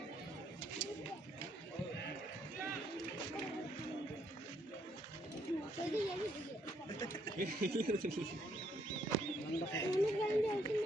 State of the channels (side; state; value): both; normal; correlation 0.71